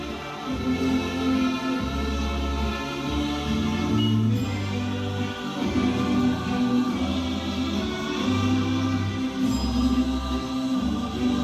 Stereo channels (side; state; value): both; identical; correlation 1.00